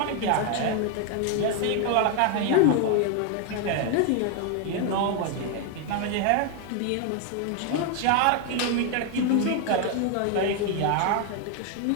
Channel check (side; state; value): both; different; correlation 0.01